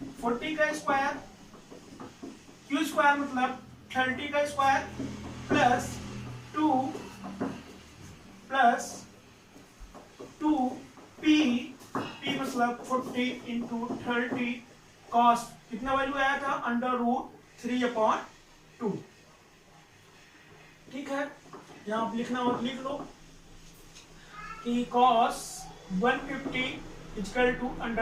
का स्क्वायर, q स्क्वायर मतलब 30 का square plus 2 plus 2p, p मतलब 40 इंटू 30 cos, कितना वैल्यू आया था, √3/2। ठीक है, यहाँ आप लिखना हो लिख लो कि cos 150 इक्वल टू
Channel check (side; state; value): both; identical; correlation 1.00